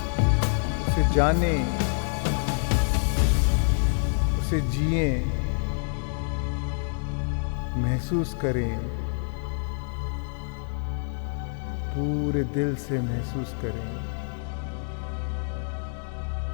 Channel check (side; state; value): right; silent; digital silence